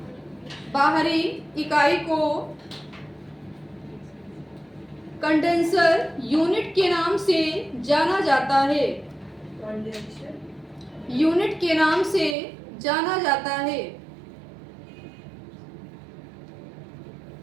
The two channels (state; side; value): drops out; left; at 12.4 s